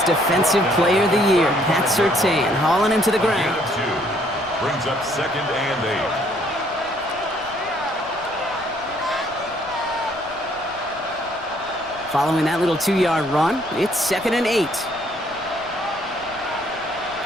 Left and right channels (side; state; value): left; noise; rumble, 23 dB below the sound